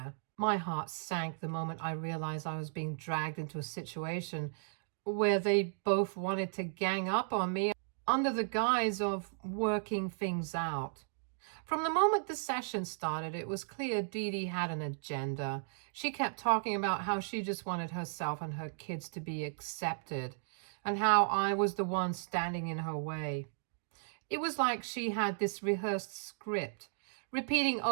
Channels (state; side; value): silent; left; digital silence